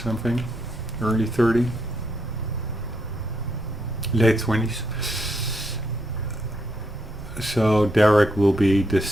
early 30, late 20s. So Derek will be the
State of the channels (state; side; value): noise; right; rumble, 20 dB below the sound